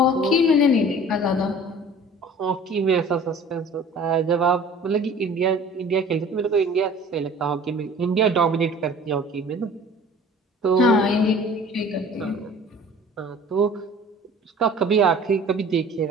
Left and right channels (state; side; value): normal; both; correlation 0.47